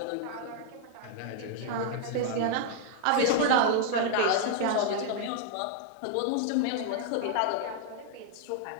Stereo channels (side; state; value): both; different; correlation -0.01